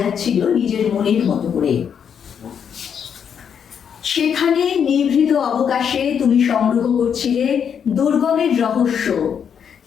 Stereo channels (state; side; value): quieter; right; 7.7 dB